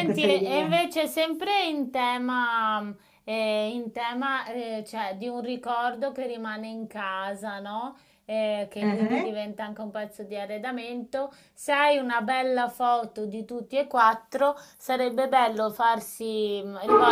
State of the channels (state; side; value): identical; both; correlation 1.00